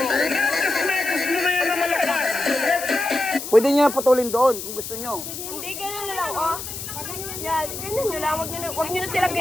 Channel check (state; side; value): noise; left; hiss, 8 dB below the sound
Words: Pwede niya putulin doon kung gusto niyo. Hindi, ganun na lang, oh. Yan, ganun nyo lang. Huwag nyo na sila